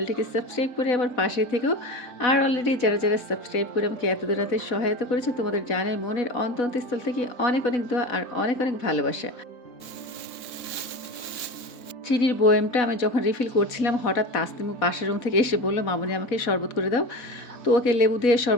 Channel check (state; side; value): late; right; 4.1 ms